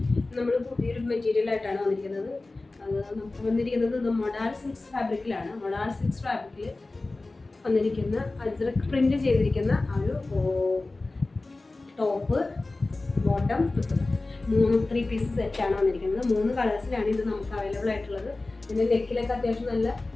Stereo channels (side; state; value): right; quieter; 3.2 dB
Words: നമ്മൾ പുതിയൊരു മെറ്റീരിയലായിട്ടാണ് വന്നിരിക്കുന്നത്. അത് നമുക്ക് വന്നിരിക്കുന്നത് മൊഡാൾ സിൽക്സ് ഫാബ്രിക്കിലാണ്. മൊഡാൾ സിൽക്സ് ഫാബ്രിക്കിൽ വന്നിരിക്കുന്ന അജ്രക് പ്രിന്റ് ചെയ്തിരിക്കുന്ന ആ ഒരു ടോപ്പ്, ബോട്ടം, 3 പീസ് സെറ്റാണ് വന്നിരിക്കുന്നത്. 3 കളേഴ്സിലാണ് ഇത് നമുക്ക് അവൈലബിൾ ആയിട്ടുള്ളത്. ഇതിൻ്റെ നെക്കിലൊക്കെ അത്യാവശ്യം നല്ല